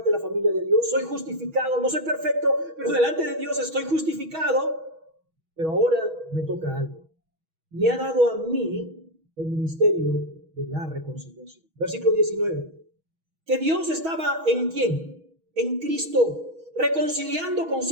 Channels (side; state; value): left; late; 6.2 ms